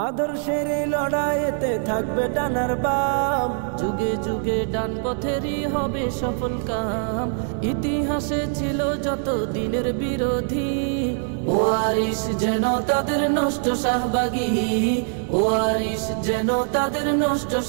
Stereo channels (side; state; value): left; silent; 63 dB below the other